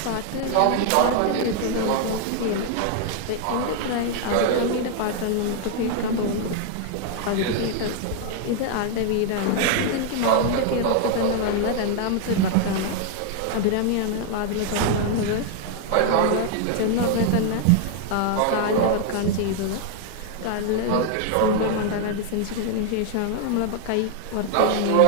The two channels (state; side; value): different; both; correlation 0.00